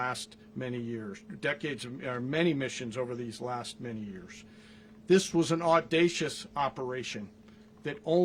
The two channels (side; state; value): both; identical; correlation 1.00